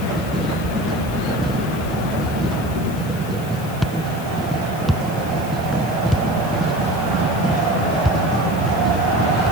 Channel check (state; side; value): noise; left; hiss, 17 dB below the sound